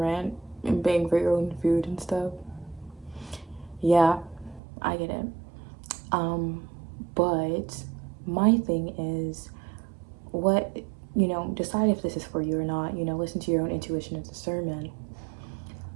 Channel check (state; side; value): drops out; left; at 4.6 s